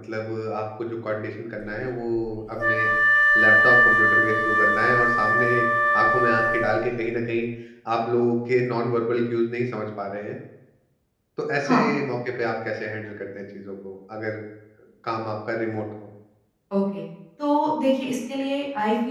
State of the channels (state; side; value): identical; both; correlation 1.00